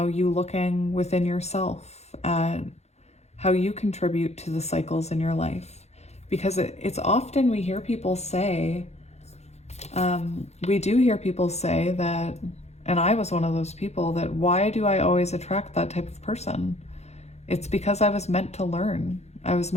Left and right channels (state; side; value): late; right; 0.31 ms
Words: you looking within yourself at how you contribute to the cycles in your life. Because it's often we hear people say, we do hear people say that, and I was one of those people, that why do I always attract that type of person? It's because I was meant to learn. I was